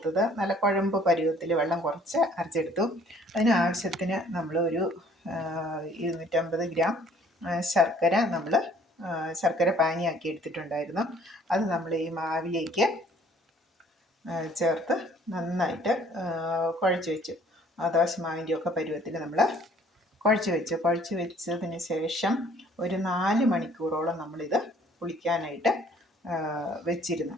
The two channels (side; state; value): both; normal; correlation 0.58